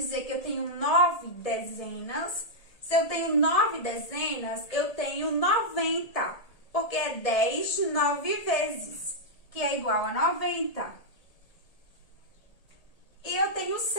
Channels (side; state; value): right; late; 1.8 ms